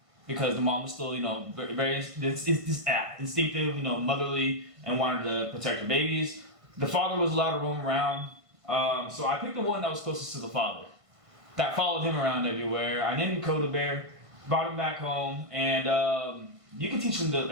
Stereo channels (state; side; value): late; left; 1.5 ms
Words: because the mom was still, you know, very instinctive, you know, motherly, and wanted to protect her babies. The father was allowed to roam around, so I picked the one that was closest to the father. That followed him around everywhere. I named him Coda Bear, brought him back home, and you can teach them